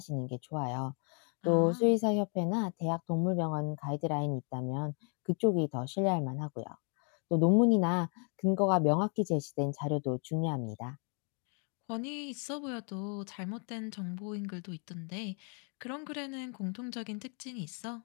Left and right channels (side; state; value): right; quieter; 39.3 dB